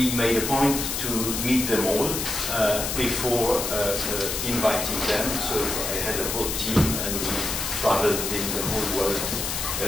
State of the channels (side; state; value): left; noise; hiss, 2 dB below the sound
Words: made a point to meet them all before inviting them. So I had a whole team, and we traveled in the whole world